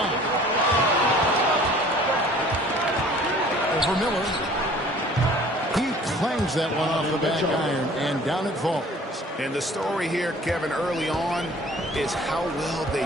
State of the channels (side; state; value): both; normal; correlation 0.50